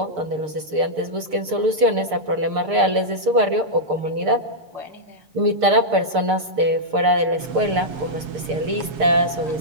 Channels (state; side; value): late; left; 6.6 ms